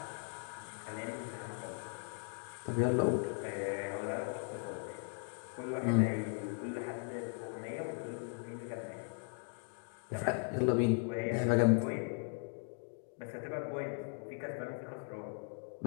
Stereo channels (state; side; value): silent; right; 52 dB below the other